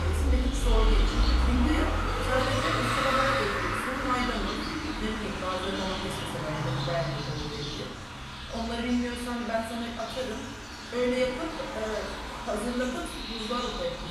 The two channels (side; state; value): both; identical; correlation 1.00